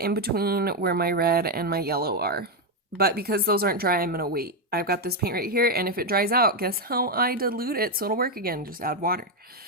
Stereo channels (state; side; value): normal; both; correlation 0.04